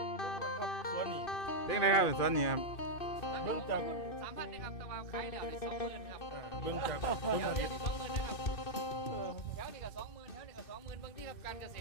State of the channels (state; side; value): late; right; 2.6 ms